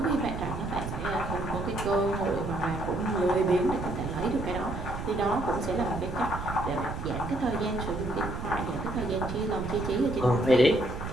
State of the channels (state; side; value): noise; right; rumble, 6 dB below the sound